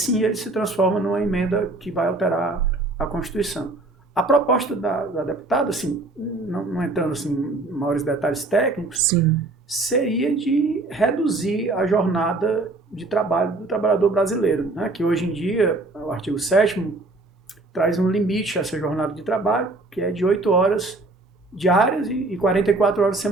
ele se transforma numa emenda que vai alterar a Constituição. A proposta da deputada, assim, não entrando assim, em maiores detalhes técnicos, sim. Seria de reduzir a jornada de trabalho do trabalhador brasileiro, né? Que hoje em dia, o artigo 7º traz um limite a essa jornada de trabalho, que é de 8 horas diárias e 44 horas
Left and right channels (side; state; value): left; quieter; 3.1 dB